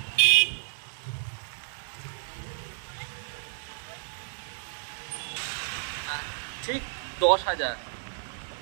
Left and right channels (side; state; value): left; silent; digital silence